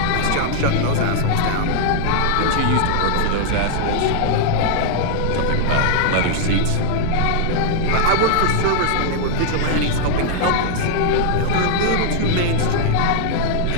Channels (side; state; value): both; different; correlation -0.01